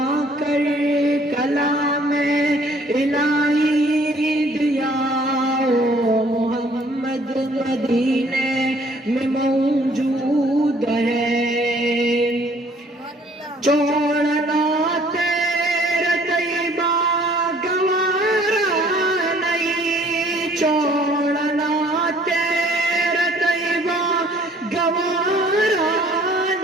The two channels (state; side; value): normal; both; correlation 0.58